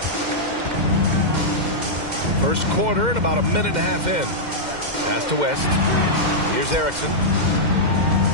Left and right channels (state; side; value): late; left; 2.1 ms